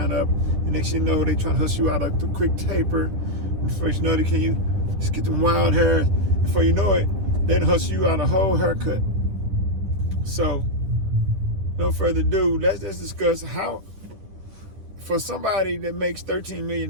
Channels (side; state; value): left; late; 10 ms